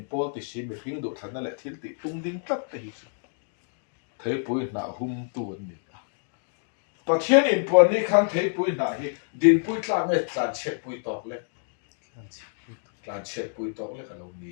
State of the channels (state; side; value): silent; right; digital silence